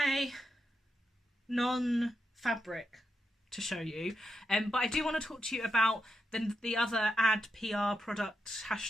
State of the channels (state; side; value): normal; both; correlation 0.86